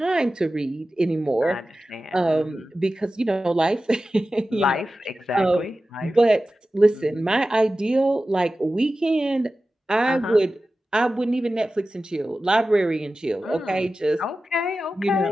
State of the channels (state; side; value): normal; both; correlation 0.94